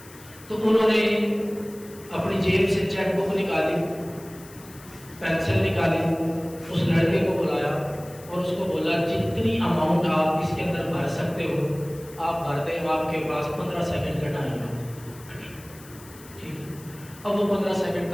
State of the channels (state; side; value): noise; left; hiss, 21 dB below the sound